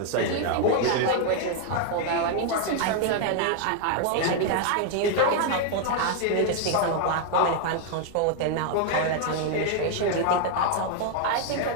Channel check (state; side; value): different; both; correlation 0.00